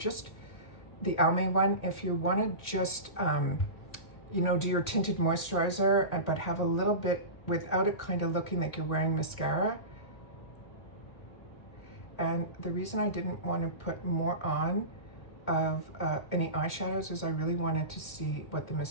the Almay one, if you want to just, you know, do your tinted moisturizer, but have a little bit without it kind of looking like you're wearing mascara. And the reason I didn't want to put more on of any eyeshadows is I really wanted to see what the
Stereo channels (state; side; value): late; right; 1.8 ms